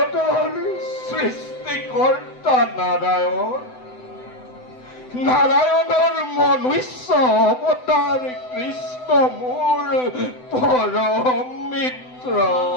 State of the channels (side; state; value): right; late; 7.9 ms